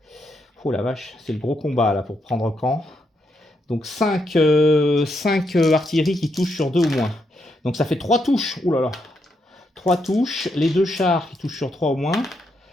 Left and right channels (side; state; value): both; normal; correlation 0.79